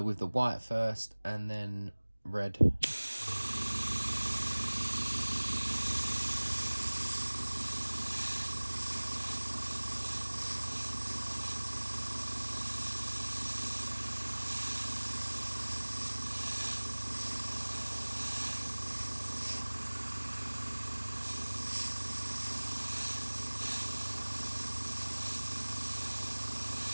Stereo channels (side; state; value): both; inverted; correlation -1.00